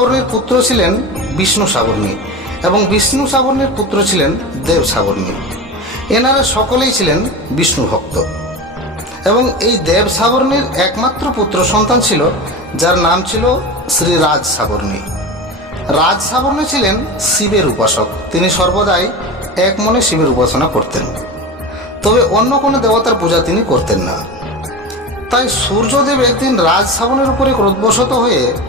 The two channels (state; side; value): normal; both; correlation 0.27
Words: পুত্র ছিলেন বিষ্ণু সাবর্ণী এবং বিষ্ণু সাবর্ণীর পুত্র ছিলেন দেব সাবর্ণী। এনারা সকলেই ছিলেন বিষ্ণু ভক্ত এবং এই দেব সাবর্ণীর একমাত্র পুত্র সন্তান ছিল যার নাম ছিল শ্রী রাজ সাবর্ণী। রাজ সাবর্ণী ছিলেন শিবের উপাসক, তিনি সর্বদাই এক মনে শিবের উপাসনা করতেন, তবে অন্য কোনো দেবতার পূজা তিনি করতেন না। তাই সূর্যদেব একদিন রাজ সাবর্ণীর উপরে ক্রোধবশত হয়ে